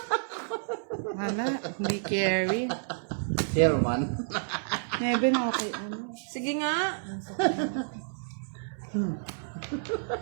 Wala, hindi carry. Chairman. Never na okay. Ano? Sige nga.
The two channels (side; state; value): left; silent; 58 dB below the other